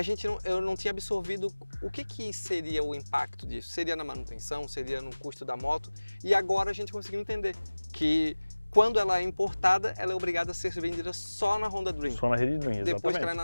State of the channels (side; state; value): both; inverted; correlation -1.00